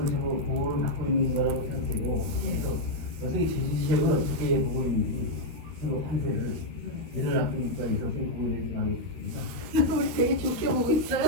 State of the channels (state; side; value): late; left; 13 ms